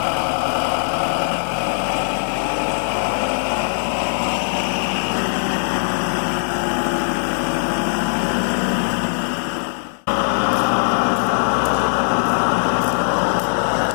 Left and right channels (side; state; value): right; silent; digital silence